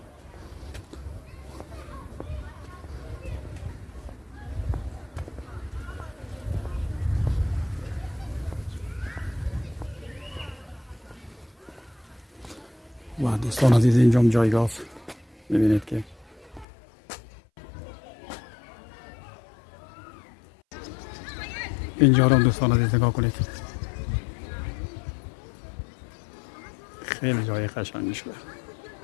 و دوستان عزیز اینجا جایگاه است. میبینید که اینجا رو دوستان عزیز نگاه کنید، خیلی جای قشنگی شده.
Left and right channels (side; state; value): right; drops out; at 16.7 s